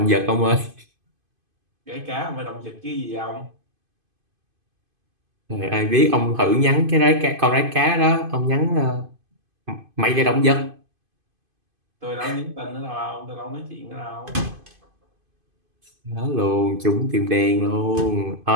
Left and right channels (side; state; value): left; late; 2.5 ms